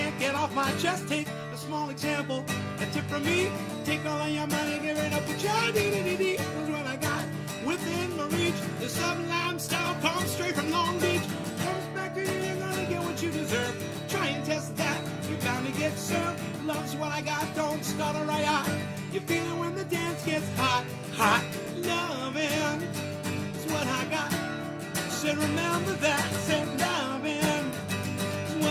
get off my chest. Take a small example, a tip from me. Take all of your money, give it up with your dee-dee-dee-dee. That's what I got within my reach. The sublime style comes straight from Long Beach. Comes back to you, you're gonna get what you deserve. Try and test that, you're bound to get served. Love's what I got, don't stutter right out. You feel it when the dance gets hot, hot. Loving is what I got. Said remember that. Said loving is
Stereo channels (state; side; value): identical; both; correlation 1.00